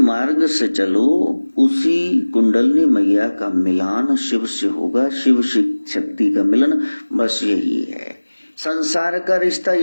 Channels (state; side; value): inverted; both; correlation -1.00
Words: से चलो, उसी कुंडलनी मैया का मिलान शिव से होगा, शिव शक्ति का मिलन, बस यही है। संसार का रिश्ता